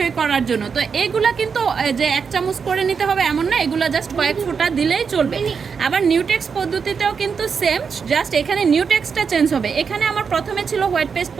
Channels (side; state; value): left; quieter; 6.0 dB